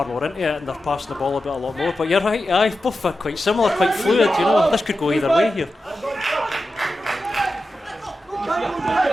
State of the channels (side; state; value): both; normal; correlation 0.91